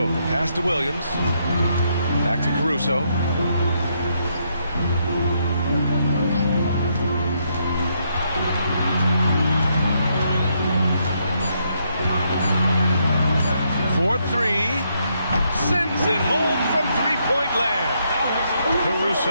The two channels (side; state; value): both; inverted; correlation -0.76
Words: the pass to Williams. Back to Caruso. For 3. Sends it home from three-point land.